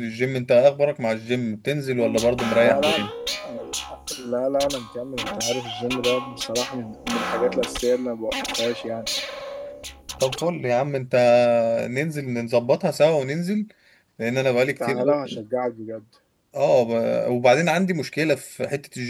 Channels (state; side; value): identical; both; correlation 1.00